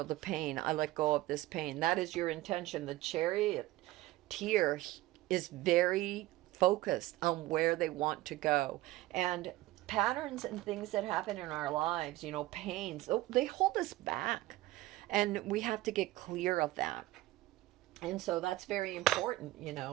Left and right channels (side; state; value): left; quieter; 17.5 dB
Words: pain, I let go of this pain. That is your intention. The charioteer is very focused on where they want to go. And patterns and things that happen in our lives, pains, they hold us back, and we have to get clear of that. And so that's very important.